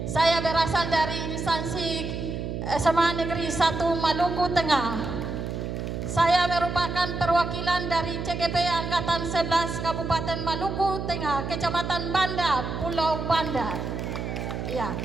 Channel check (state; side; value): noise; right; hum, 4 dB below the sound